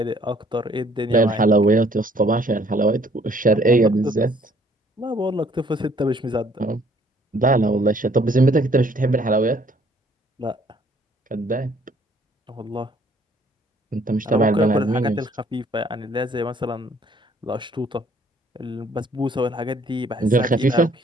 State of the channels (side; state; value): both; normal; correlation 0.61